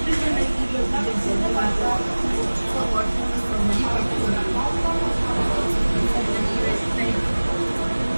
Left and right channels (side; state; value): both; inverted; correlation -1.00